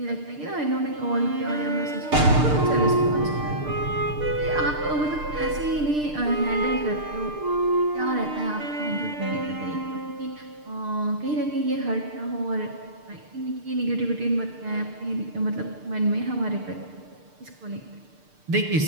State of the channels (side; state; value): left; late; 6.7 ms